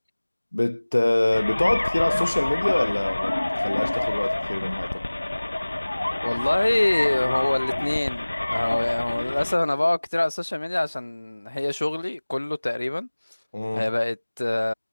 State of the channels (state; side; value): inverted; both; correlation -1.00